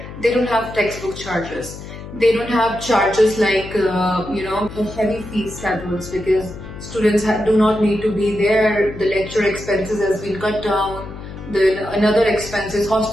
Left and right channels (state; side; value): noise; left; hum, 13 dB below the sound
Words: they don't have textbook charges. They don't have charges like, heavy fee schedules, because students do not need to be there. The lecture expenses has been cut down. Another expenses,